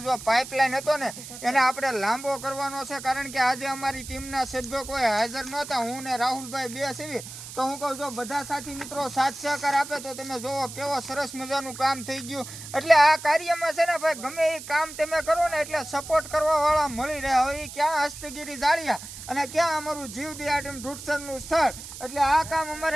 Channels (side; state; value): right; noise; hiss, 12 dB below the sound